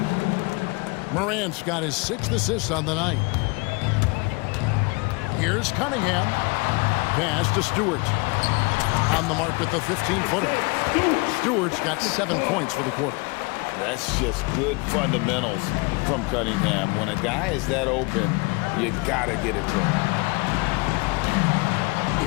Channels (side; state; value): right; quieter; 28.0 dB